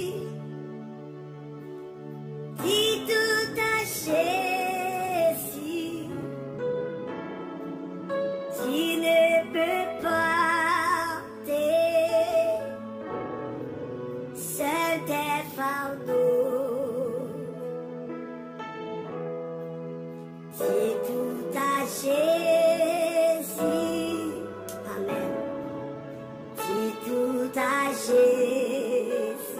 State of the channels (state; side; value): identical; both; correlation 1.00